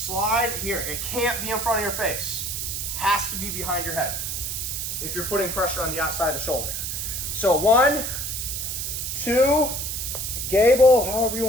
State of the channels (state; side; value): noise; right; hiss, 3 dB below the sound